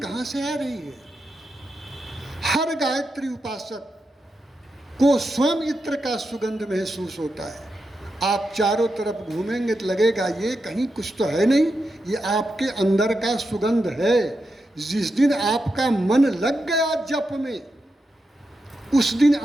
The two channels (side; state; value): both; normal; correlation 0.87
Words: कहाँ से आ रही है। हर गायत्री उपासक को स्वयं इत्र का सुगंध महसूस होता है। आप चारों तरफ घूमेंगे तो लगेगा ये कहीं कुछ तो है नहीं, ये आपके अंदर का सुगंध है। जिस दिन आपका मन लग गया जप में, उस दिन